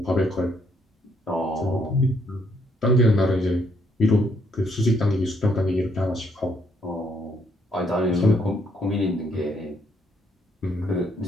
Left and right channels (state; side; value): normal; both; correlation 0.71